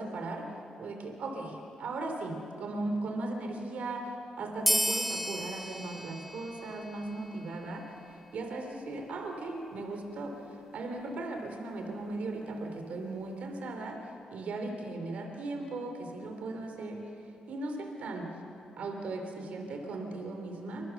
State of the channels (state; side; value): normal; both; correlation 0.84